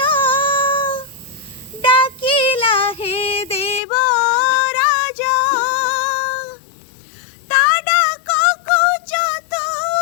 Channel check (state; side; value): drops out; right; at 3.8 s